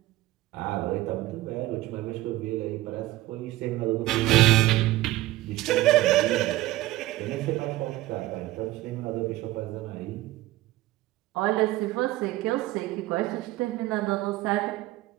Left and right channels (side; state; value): left; quieter; 17.0 dB